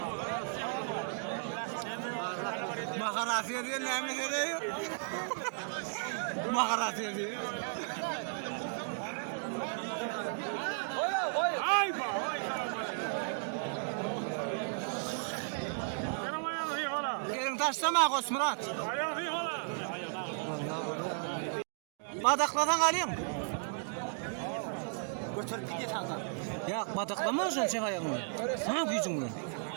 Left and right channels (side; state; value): left; silent; digital silence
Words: Makarasiye diyorlar mı diyor? Makarasiye diyor. Ay bak, ay selam aleyküm. Benim ayağım iyi falan. Yerin taşlama Kosmurat. Ayağım iyi falan. Badakladan alayım. Ya badaklama olsun sen ayağımı. Ha gücün